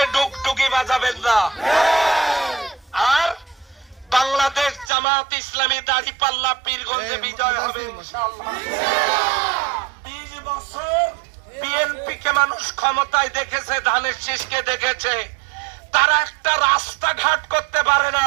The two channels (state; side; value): drops out; left; at 4.9 s